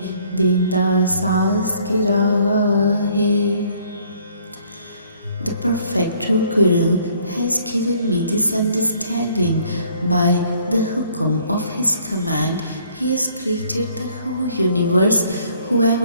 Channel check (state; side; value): inverted; both; correlation -0.61